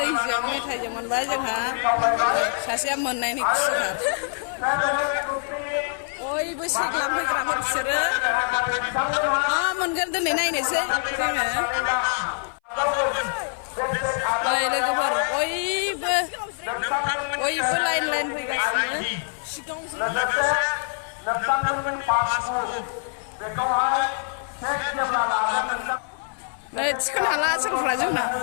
मेथाइजों मोनबाय जोंहा सासेया मोननायनि खुसिथार बयबो सेक लांफैग्राफोर बिसोरो मा मोनगोन दिनै नायनोसै जोङो नै लोगोफोर बयबो लाइन फैगासिनो नै थिखोनो हाला सोरफ्रा जोंना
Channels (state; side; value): silent; right; 59 dB below the other